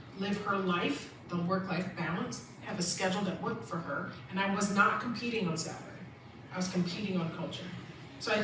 live her life, the work-life balance, have a schedule that worked for her, and I was not competing on salary. I was competing on culture. So I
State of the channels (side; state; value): both; identical; correlation 1.00